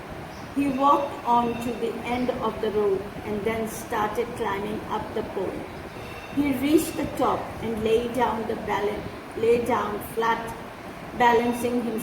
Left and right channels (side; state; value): both; identical; correlation 1.00